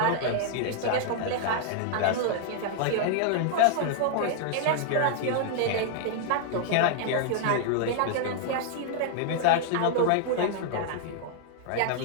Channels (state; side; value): different; both; correlation -0.01